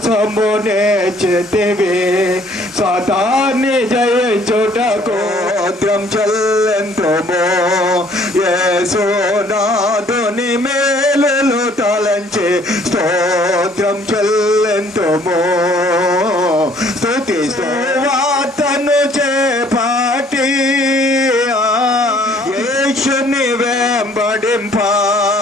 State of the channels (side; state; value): both; normal; correlation 0.60